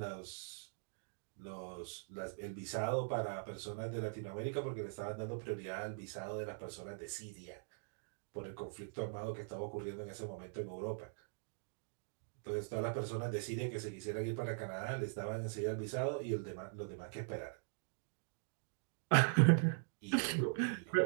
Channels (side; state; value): left; silent; digital silence